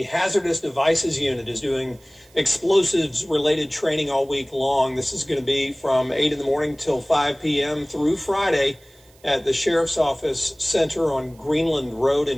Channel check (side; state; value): right; noise; hiss, 29 dB below the sound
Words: Hazardous Devices Unit is doing explosives-related training all week long. This is going to be from 8 in the morning till 5 p.m. through Friday at the Sheriff's Office Center on Greenland Road